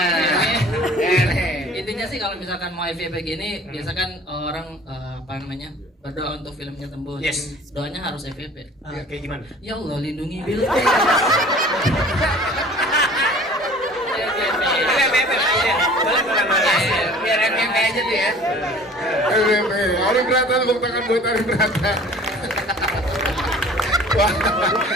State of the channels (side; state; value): both; normal; correlation 0.47